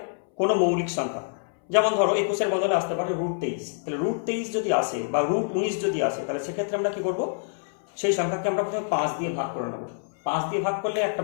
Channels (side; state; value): right; silent; 61 dB below the other